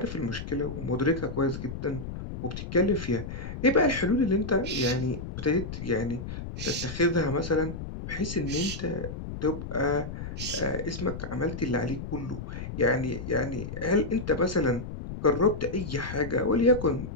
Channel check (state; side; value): noise; left; rumble, 8 dB below the sound